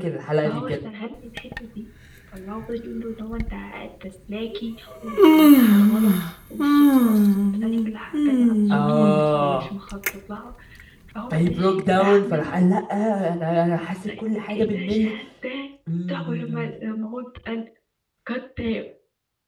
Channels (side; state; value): both; identical; correlation 1.00